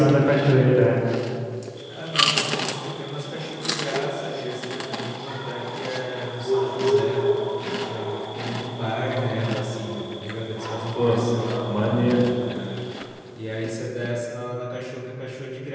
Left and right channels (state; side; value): identical; both; correlation 1.00